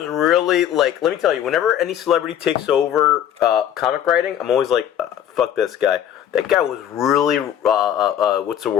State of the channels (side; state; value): right; quieter; 10.2 dB